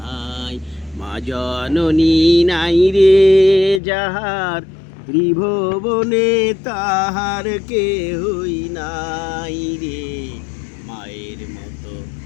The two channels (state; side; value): drops out; right; at 3.8 s